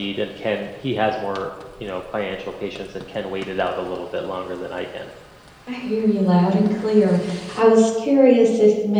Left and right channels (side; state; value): both; identical; correlation 1.00